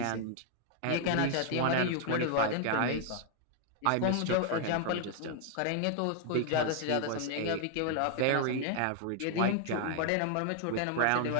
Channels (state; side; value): different; both; correlation 0.00